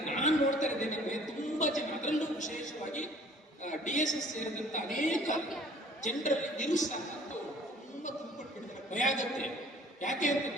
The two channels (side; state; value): both; normal; correlation 0.53